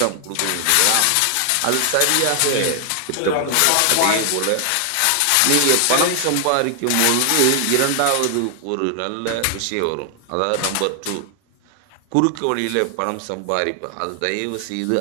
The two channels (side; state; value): both; different; correlation 0.00